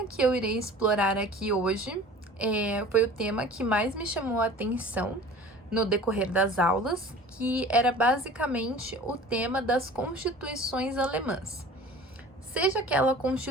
que eu irei explorar aqui hoje foi o tema que mais me chamou a atenção no decorrer das aulas, que era basicamente o tema das constituições alemãs. Seja aquela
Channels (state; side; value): normal; both; correlation 0.43